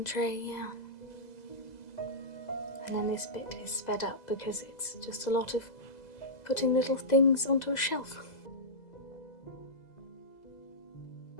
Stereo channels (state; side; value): late; right; 2.0 ms